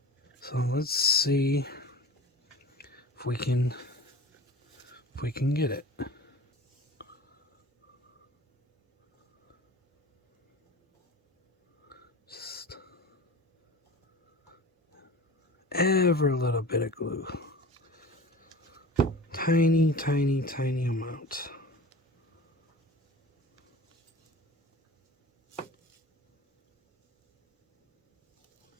So let's see if we can get it. Just every little bit of glue. Tiny, tiny, tiny amount.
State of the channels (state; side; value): normal; both; correlation 0.38